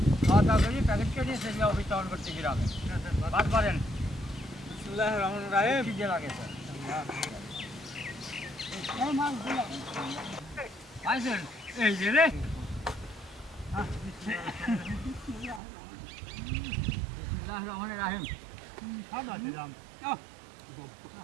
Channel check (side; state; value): left; drops out; at 15.6 s